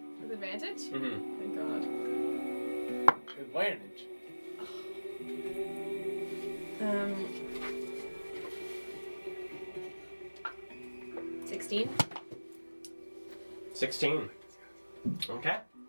advantage? Mm-hmm. Thank God. Advantage. 16. 16. Okay.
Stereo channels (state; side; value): inverted; both; correlation -1.00